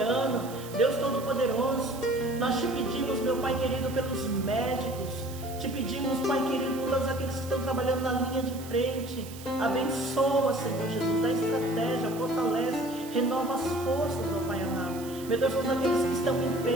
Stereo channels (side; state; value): right; noise; hiss, 16 dB below the sound